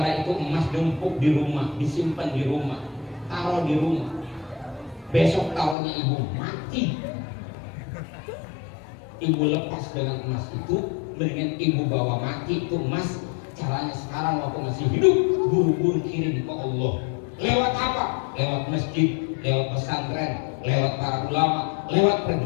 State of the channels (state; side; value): drops out; right; at 5.8 s